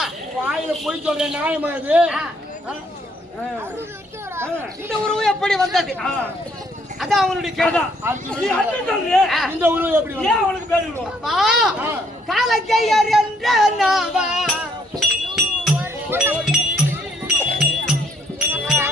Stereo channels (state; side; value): normal; both; correlation 0.68